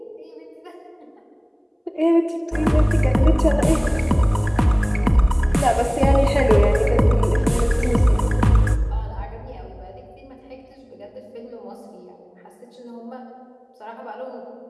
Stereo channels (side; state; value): both; identical; correlation 1.00